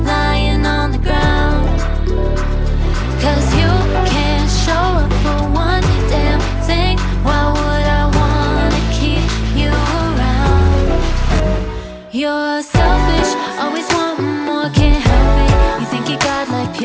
lying on the ground, 'cause you can't show up for one damn thing. Why would I wanna keep you around? You're selfish, always wanting more, can't help it. You think you got like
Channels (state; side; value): identical; both; correlation 1.00